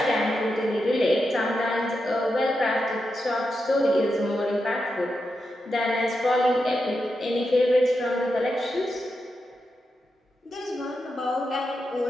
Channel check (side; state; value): both; normal; correlation 0.87